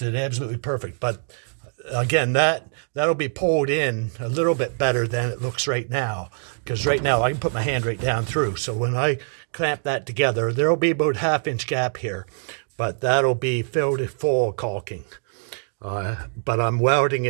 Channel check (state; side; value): silent; left; 63 dB below the other